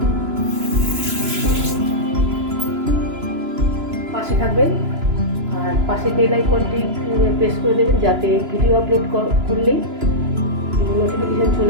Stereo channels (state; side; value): late; left; 2.9 ms